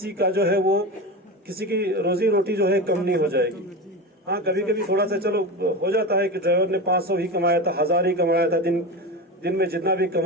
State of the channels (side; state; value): both; normal; correlation 0.24